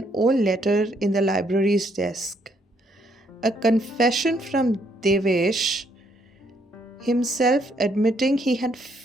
old letter in the library's desk. A confession from Devesh himself admitting he had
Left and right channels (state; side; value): normal; both; correlation 0.70